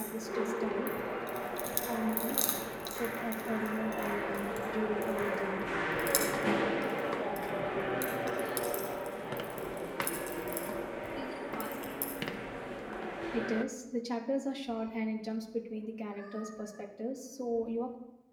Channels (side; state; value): both; identical; correlation 1.00